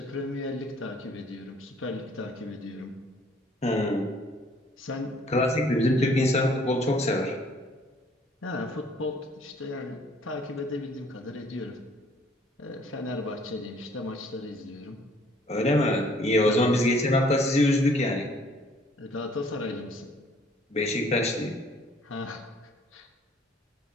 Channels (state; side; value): normal; both; correlation 0.59